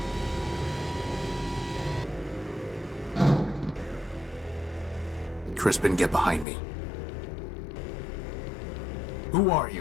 Crispin, get behind me. Who are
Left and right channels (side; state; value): right; drops out; at 6.5 s